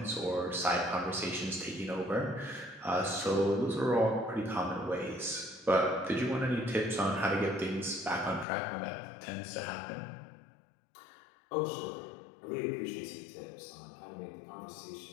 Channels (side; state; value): right; drops out; at 8.5 s